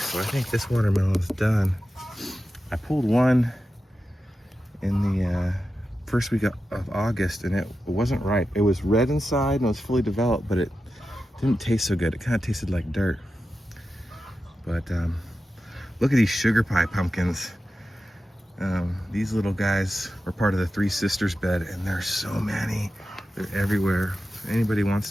So I think this watermelon is done. I pulled one in the first week of August, and it wasn't ripe. It was red inside and it was fully developed, but it didn't taste so good. It kind of tasted like dirt. But look at these sugar pie pumpkins. These little guys are part of the Three Sisters bed, and there's so many. They're everywhere. If anybody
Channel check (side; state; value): both; normal; correlation 0.91